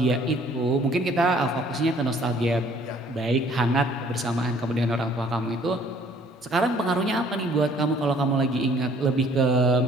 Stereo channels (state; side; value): normal; both; correlation 0.58